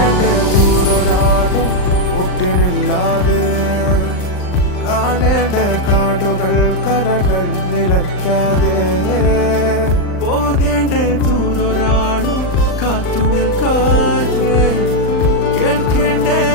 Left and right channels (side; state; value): right; late; 39 ms